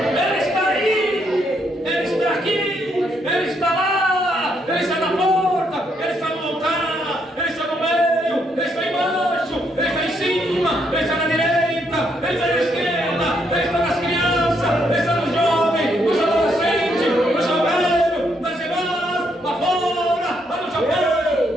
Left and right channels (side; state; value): both; normal; correlation 0.75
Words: Ele está aí. Ele está aqui. Ele está lá. Ele está na porta. Ele está no altar. Ele está no meio. Ele está embaixo. Ele está em cima. Ele está na direita. Ele está na esquerda. Ele está nas crianças. Ele está nos jovens, nos adolescentes, nos velhos, nas irmãs, lá fora, lá no Japão,